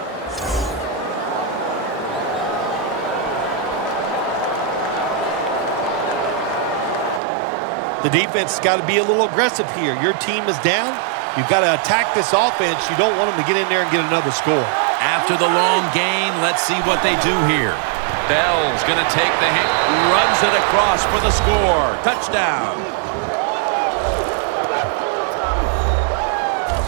The defense has got to be a little aggressive here. Your team is down. You've got to attack this offense. You don't want them to get in there and get another score. After the long gain, let's see what they do here. Bell's going to take the hit, runs it across for the score. Touchdown.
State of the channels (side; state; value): left; drops out; at 7.2 s